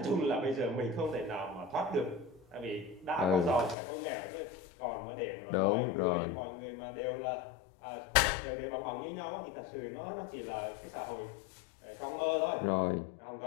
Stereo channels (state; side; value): drops out; right; at 3.8 s